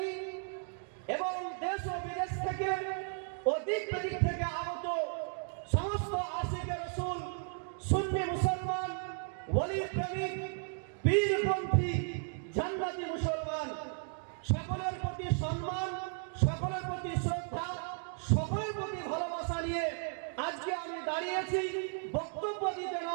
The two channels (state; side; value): silent; left; 55 dB below the other